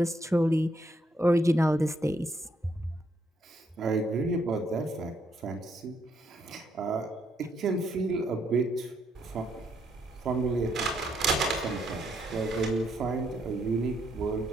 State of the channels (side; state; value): both; normal; correlation 0.74